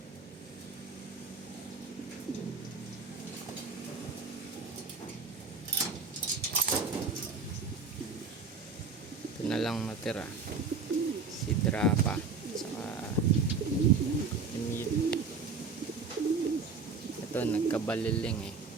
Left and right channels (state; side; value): quieter; left; 4.6 dB